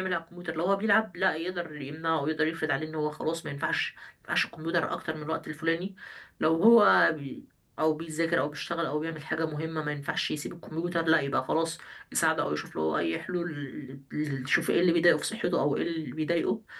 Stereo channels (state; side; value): identical; both; correlation 1.00